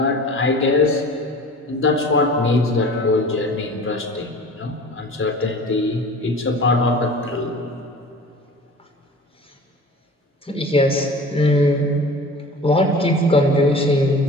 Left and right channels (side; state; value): both; normal; correlation 0.40